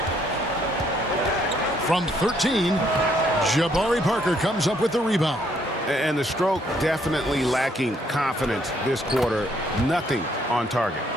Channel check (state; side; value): normal; both; correlation 0.69